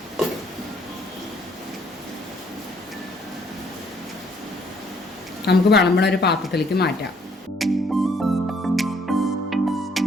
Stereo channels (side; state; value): both; normal; correlation 0.65